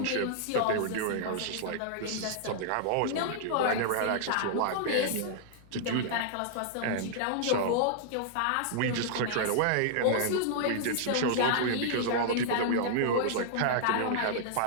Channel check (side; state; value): both; different; correlation -0.01